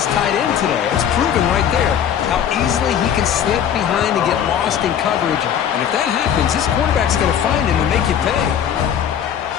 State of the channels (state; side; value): quieter; right; 9.0 dB